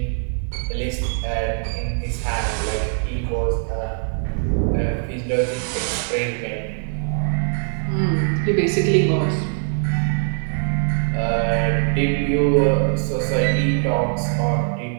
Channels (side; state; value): left; silent; 64 dB below the other